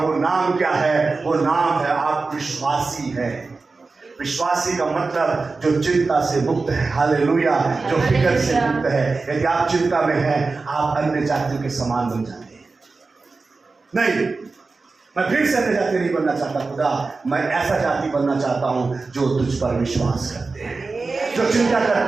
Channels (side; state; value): left; quieter; 4.0 dB